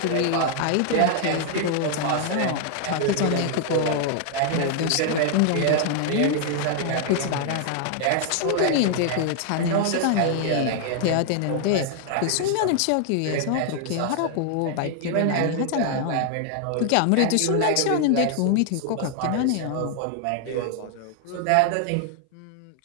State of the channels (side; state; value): both; different; correlation 0.00